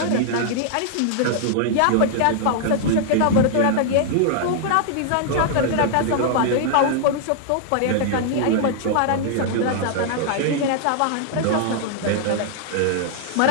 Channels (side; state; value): both; different; correlation -0.01